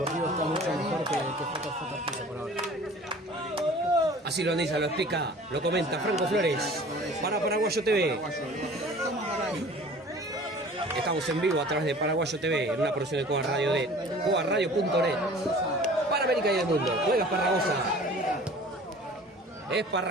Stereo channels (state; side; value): normal; both; correlation 0.46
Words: está mucho mejor que JJ por ahora. Así lo analiza, lo explica, lo comenta Franco Flores para Paraguayo TV. Estamos en vivo a través de Paraguayo TV en una producción de Cuba Radio de cuaradio.net para América y el mundo. Juega Esparragosa.